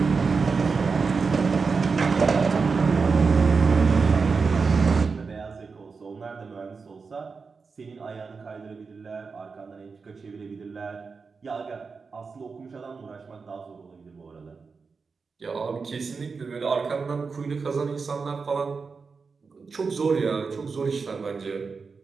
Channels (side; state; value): left; quieter; 4.9 dB